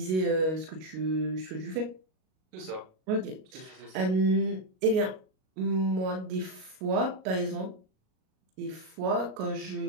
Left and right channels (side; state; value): left; late; 38 ms